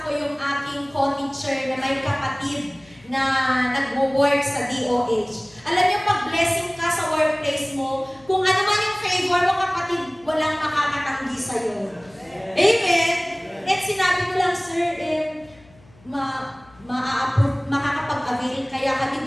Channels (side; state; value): left; noise; hum, 27 dB below the sound